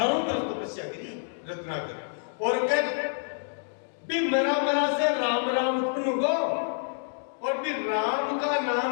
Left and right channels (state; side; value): silent; right; digital silence